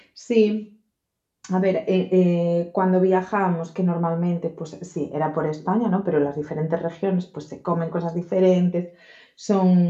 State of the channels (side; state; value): both; identical; correlation 1.00